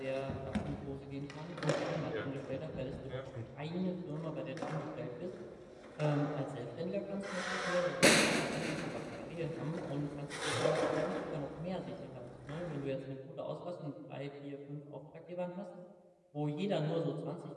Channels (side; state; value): both; identical; correlation 1.00